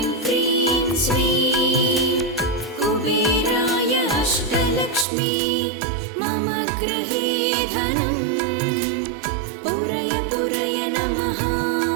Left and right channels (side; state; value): left; drops out; at 5.1 s